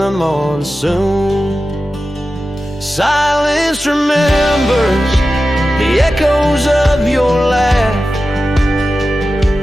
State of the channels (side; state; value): both; normal; correlation 0.93